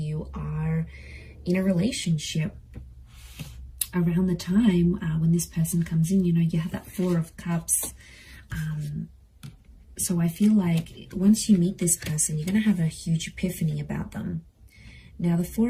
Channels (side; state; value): both; identical; correlation 1.00